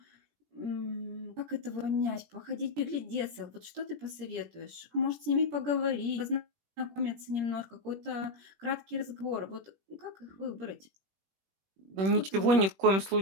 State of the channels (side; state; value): left; late; 21 ms